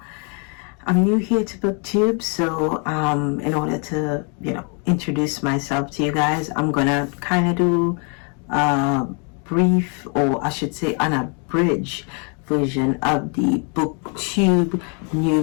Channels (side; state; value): right; quieter; 37.5 dB